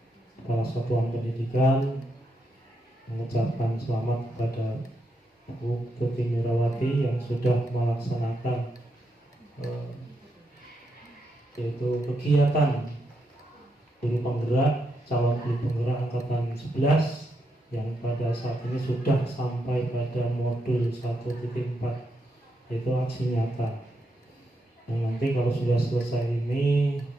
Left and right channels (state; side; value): normal; both; correlation 0.82